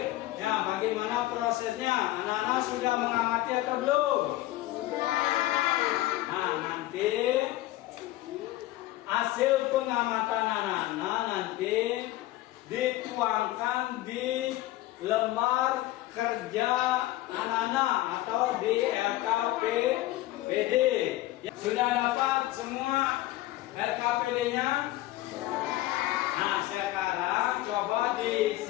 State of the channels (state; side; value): quieter; right; 16.5 dB